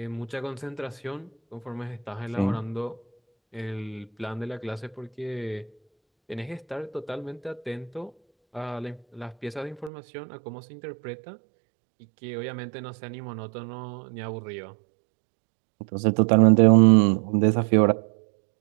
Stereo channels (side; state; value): left; drops out; at 9.9 s